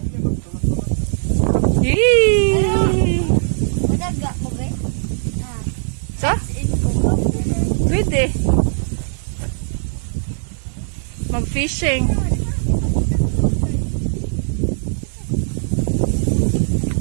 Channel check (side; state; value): left; silent; digital silence